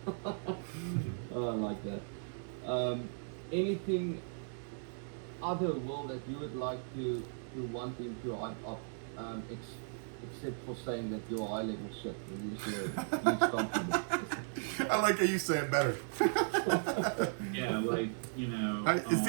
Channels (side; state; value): left; silent; 53 dB below the other